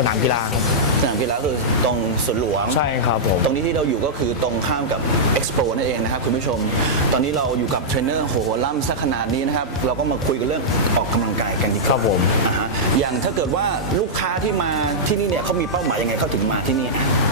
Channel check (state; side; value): normal; both; correlation -0.09